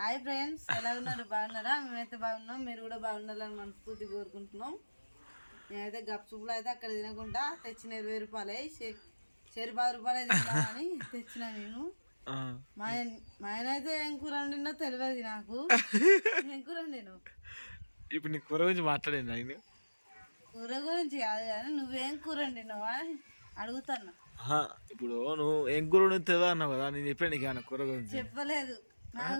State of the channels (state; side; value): inverted; both; correlation -1.00